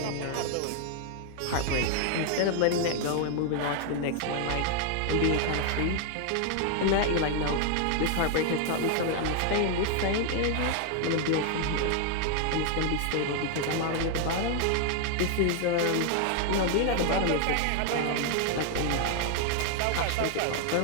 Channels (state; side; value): different; both; correlation 0.00